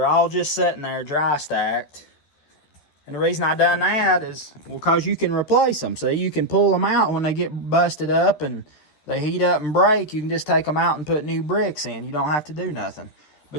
all just sitting there dry stacked. And the reason I done that is, well, because you can replace them. See, you can pull them out when they get busted up and they heat up and break. You can just take them out and put new bricks in. You don't have to do nothing.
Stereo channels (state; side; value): late; right; 13 ms